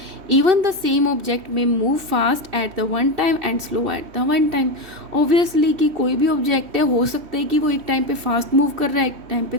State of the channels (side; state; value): left; late; 3.1 ms